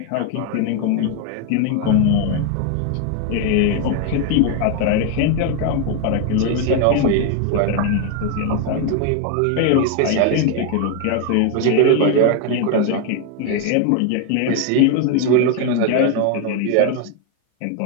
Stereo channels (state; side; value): different; both; correlation 0.01